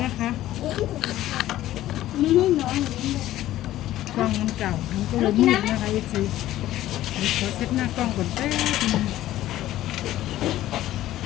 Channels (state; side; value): quieter; right; 14.2 dB